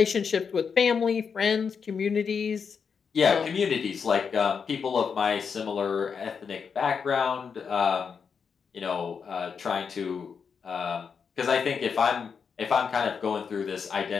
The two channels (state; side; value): quieter; right; 6.2 dB